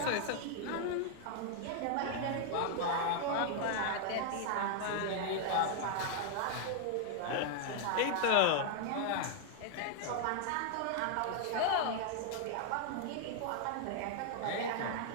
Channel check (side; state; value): both; different; correlation 0.00